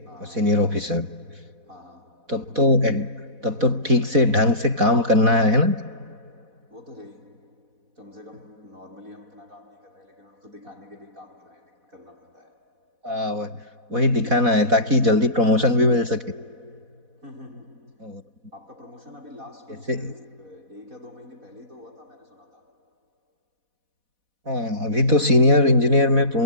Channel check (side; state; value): left; late; 4.1 ms